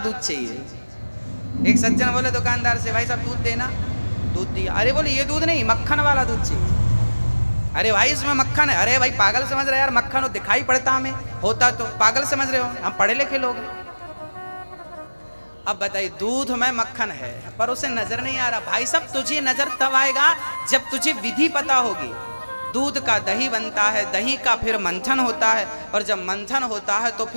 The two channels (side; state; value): both; inverted; correlation -1.00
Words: चाहिए। एक सज्जन बोले दुकानदार से, भाई साहब दूध देना। दूध दिया। अरे बोले ये दूध नहीं, मक्खन वाला दूध चाहिए। अरे भाई इसमें मक्खन है। अरे भाई पागल समझ रहे यार, मक्खन हो दिखाई पड़ता, हमें होता तो पागल समझ रहे हो, हम पढ़े लिखे लोग हैं। अब बताइए दूध में मक्खन है पर उसे नजर नहीं आ रहा। भाई साहब तुझे नजर तब आएगा जब तुझे विधि पता होगी। दूध का दही बनता है, दही का फिर मंथन होता है, और जब मंथन होता है तो